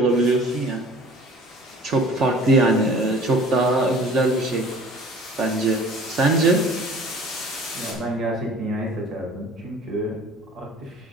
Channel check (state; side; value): normal; both; correlation 0.47